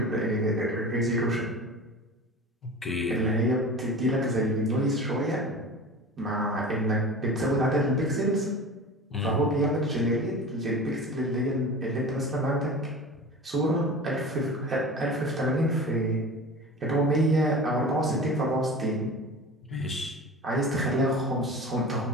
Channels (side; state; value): both; normal; correlation 0.35